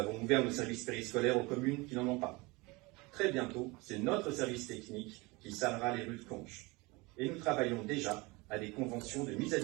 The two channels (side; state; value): left; quieter; 24.7 dB